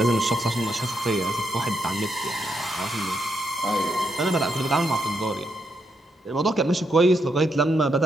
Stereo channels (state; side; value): normal; both; correlation 0.80